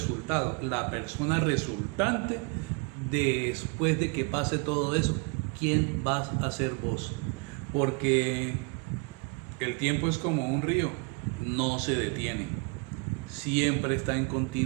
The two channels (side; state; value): left; quieter; 32.8 dB